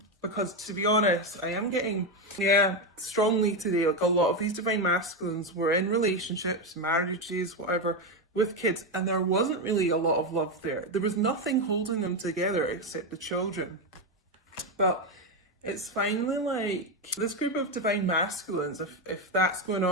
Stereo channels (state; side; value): normal; both; correlation 0.10